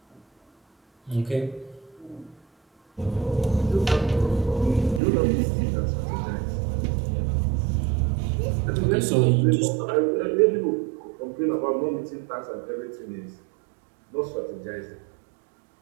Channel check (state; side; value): drops out; left; at 5.0 s